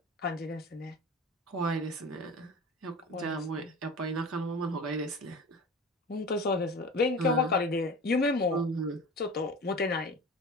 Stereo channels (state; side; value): normal; both; correlation 0.35